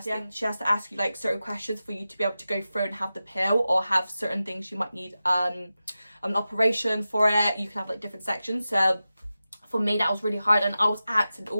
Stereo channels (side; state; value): both; inverted; correlation -0.93